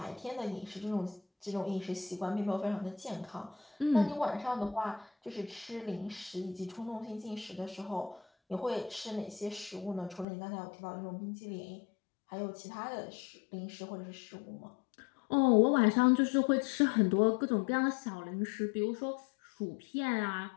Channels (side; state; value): right; drops out; at 10.2 s